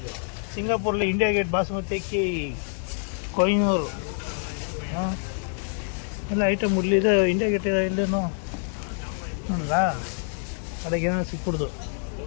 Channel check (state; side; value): silent; right; 58 dB below the other